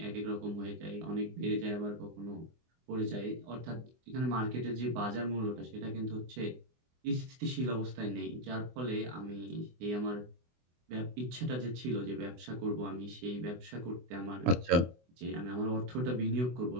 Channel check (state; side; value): late; left; 24 ms